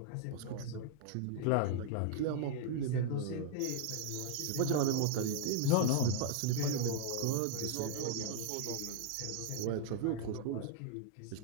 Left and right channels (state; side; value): different; both; correlation -0.01